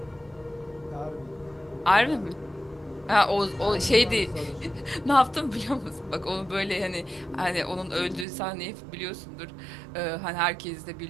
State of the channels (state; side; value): drops out; left; at 8.2 s